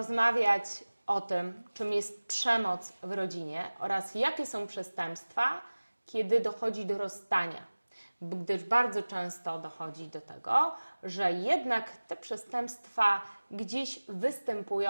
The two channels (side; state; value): both; inverted; correlation -1.00